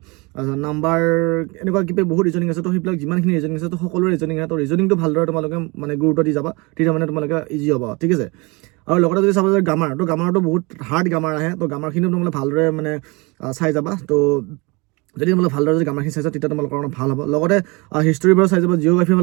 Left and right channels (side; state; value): left; quieter; 26.8 dB